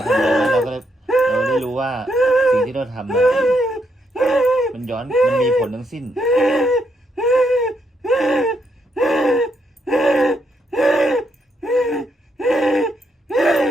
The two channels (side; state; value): both; normal; correlation 0.78